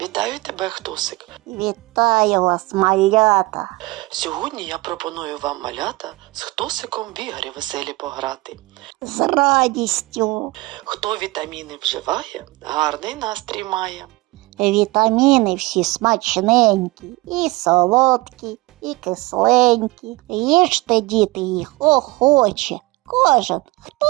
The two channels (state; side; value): quieter; left; 21.7 dB